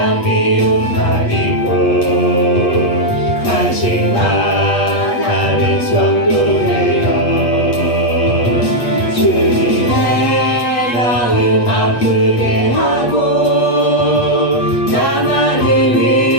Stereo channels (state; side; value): late; right; 8.3 ms